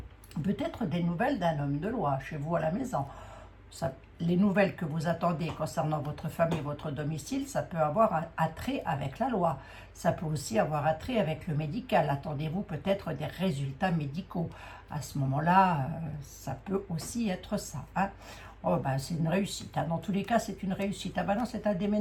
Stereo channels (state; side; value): identical; both; correlation 1.00